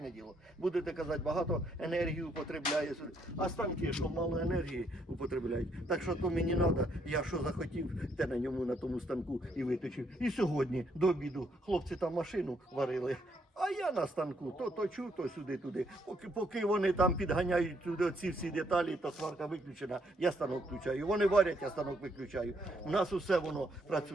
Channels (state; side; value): normal; both; correlation 0.72